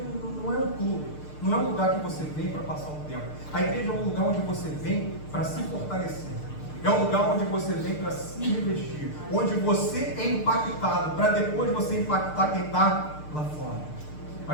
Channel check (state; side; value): late; right; 6.6 ms